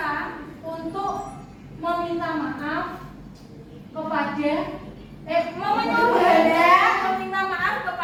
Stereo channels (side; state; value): both; identical; correlation 1.00